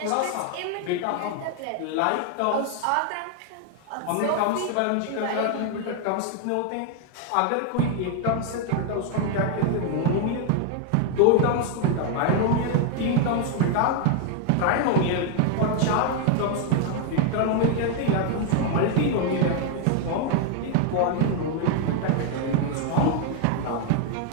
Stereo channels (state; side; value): different; both; correlation 0.00